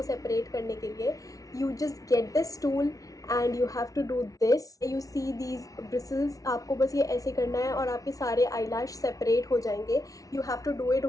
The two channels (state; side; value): late; right; 0.17 ms